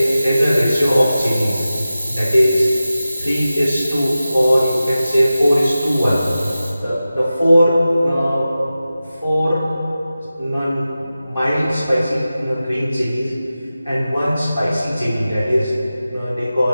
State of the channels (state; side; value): inverted; both; correlation -0.94